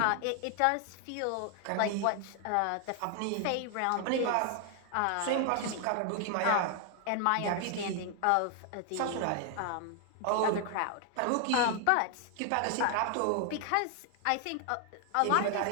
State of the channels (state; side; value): different; both; correlation 0.00